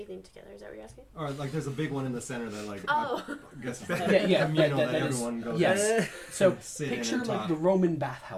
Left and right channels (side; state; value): both; identical; correlation 1.00